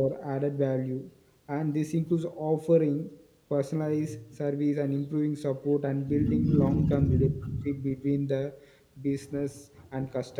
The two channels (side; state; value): both; identical; correlation 1.00